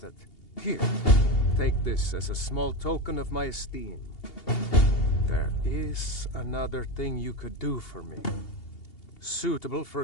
it. Here, take this as a small token of my esteem. There is another thing you could do for me. Suitable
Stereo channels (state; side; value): late; right; 2.8 ms